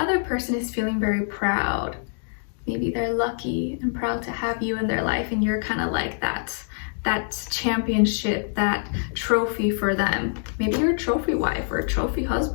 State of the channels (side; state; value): right; silent; digital silence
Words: person is feeling very proud. Maybe they're lucky and proud to have you in their life, and you're kind of like that championship, that trophy for them. Maybe you're a trophy wife or a trophy